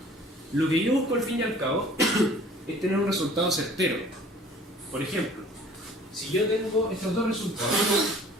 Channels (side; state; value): both; normal; correlation 0.50